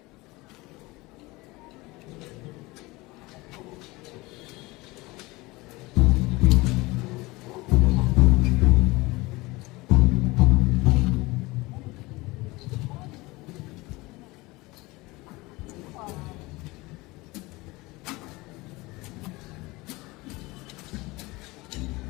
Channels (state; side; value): quieter; right; 22.2 dB